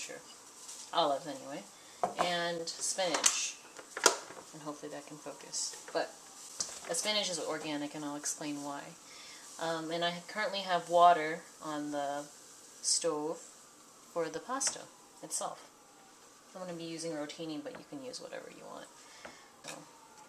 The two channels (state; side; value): identical; both; correlation 1.00